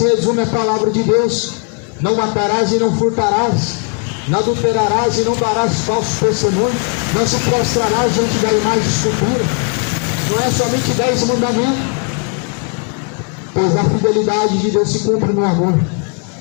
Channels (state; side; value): quieter; right; 37.9 dB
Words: resume a palavra de Deus. Não matarás e não furtarás, não adulterarás e não darás falso testemunho, não se prostrarás diante da imagem de escultura. Não é somente 10 mandamentos, pois a fidelidade de Deus se cumpre no amor,